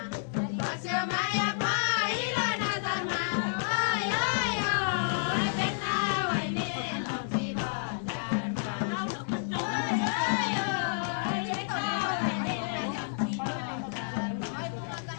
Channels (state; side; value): silent; right; digital silence